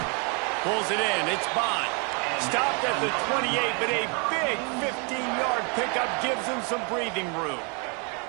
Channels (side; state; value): left; quieter; 35.1 dB